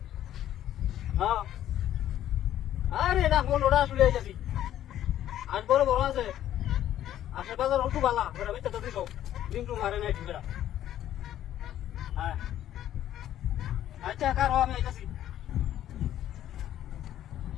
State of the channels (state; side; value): quieter; right; 11.9 dB